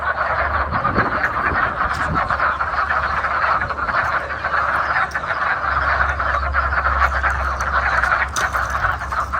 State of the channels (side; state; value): both; identical; correlation 1.00